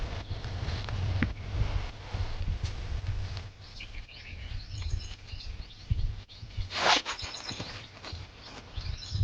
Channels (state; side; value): identical; both; correlation 1.00